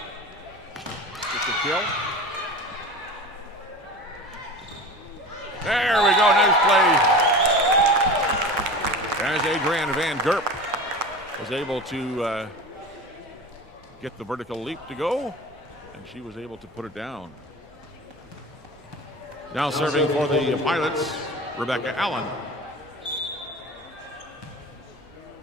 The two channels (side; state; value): both; normal; correlation 0.33